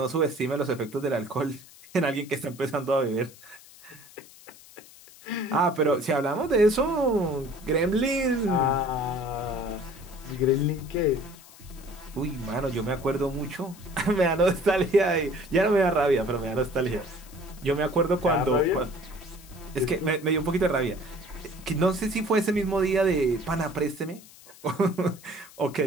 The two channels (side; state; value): left; noise; hiss, 21 dB below the sound